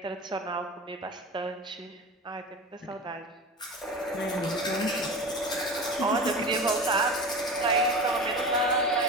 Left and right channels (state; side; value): normal; both; correlation 0.31